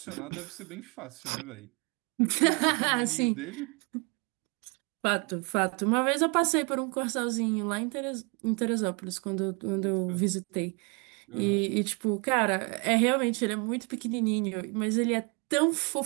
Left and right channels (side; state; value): left; quieter; 32.8 dB